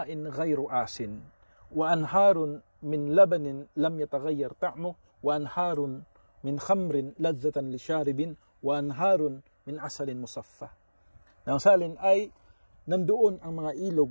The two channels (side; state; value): both; inverted; correlation -1.00